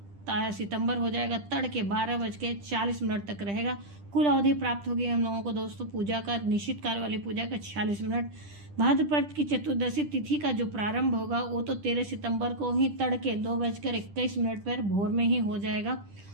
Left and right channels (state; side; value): late; left; 10 ms